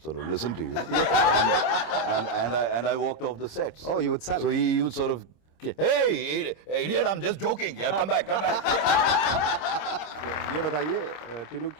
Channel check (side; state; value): right; late; 26 ms